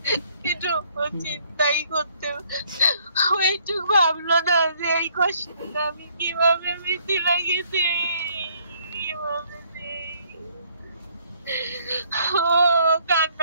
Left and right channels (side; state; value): both; inverted; correlation -0.65